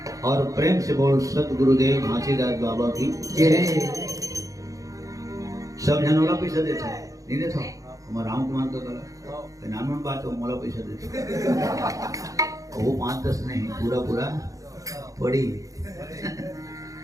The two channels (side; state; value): left; late; 0.16 ms